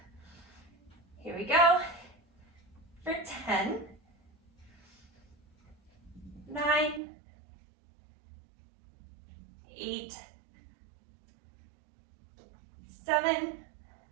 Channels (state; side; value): drops out; left; at 7.0 s